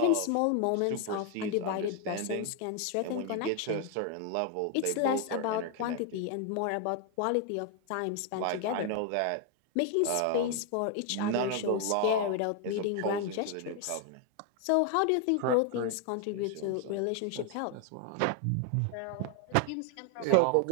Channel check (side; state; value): both; different; correlation 0.01